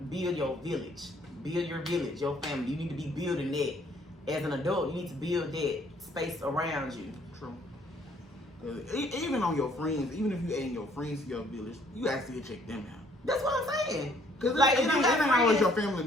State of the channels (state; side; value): normal; both; correlation 0.63